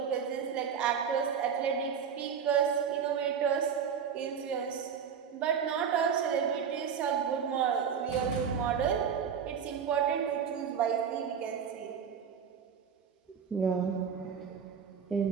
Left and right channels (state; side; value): quieter; left; 7.3 dB